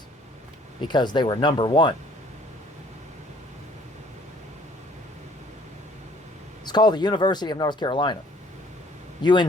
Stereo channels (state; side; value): normal; both; correlation 0.58